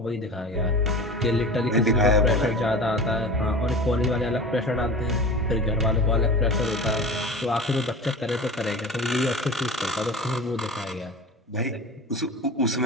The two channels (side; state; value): both; normal; correlation 0.34